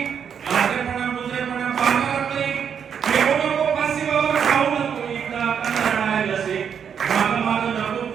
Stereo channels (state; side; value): quieter; left; 7.6 dB